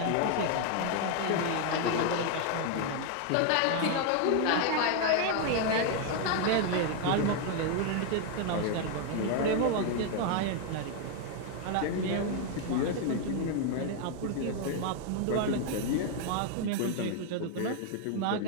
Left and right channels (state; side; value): different; both; correlation 0.00